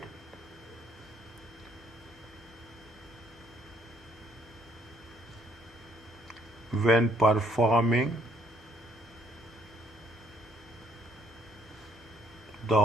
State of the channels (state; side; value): normal; both; correlation 0.66